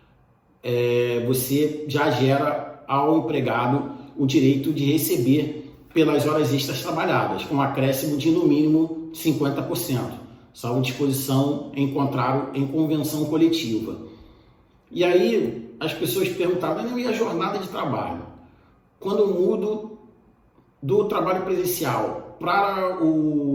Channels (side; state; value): both; identical; correlation 1.00